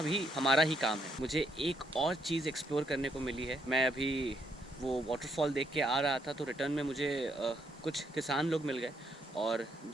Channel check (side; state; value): both; normal; correlation 0.73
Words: भी हमारा ही काम है। मुझे एक और चीज़ एक्सप्लोर करने को मिली है। मैं अभी वो वाटरफॉल देख के आ रहा था तो रिटर्न में मुझे कुछ किसान लोग मिल गए और